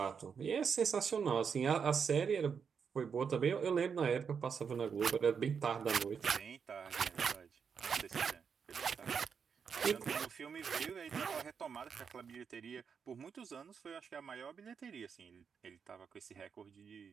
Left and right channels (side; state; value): left; quieter; 6.5 dB